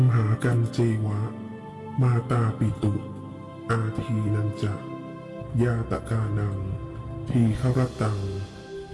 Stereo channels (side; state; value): both; identical; correlation 1.00